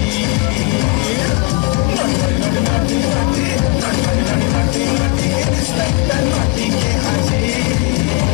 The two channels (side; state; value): right; quieter; 26.8 dB